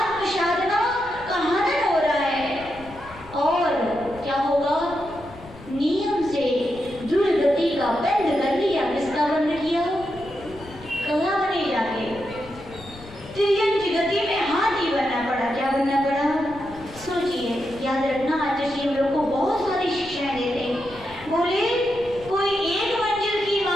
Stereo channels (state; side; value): noise; left; rumble, 19 dB below the sound